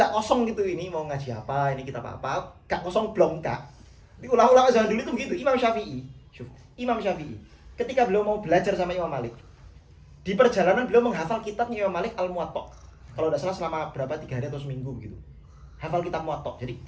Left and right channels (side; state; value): both; identical; correlation 1.00